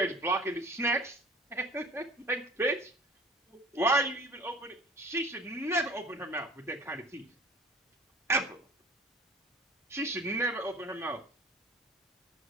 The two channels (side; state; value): both; normal; correlation 0.43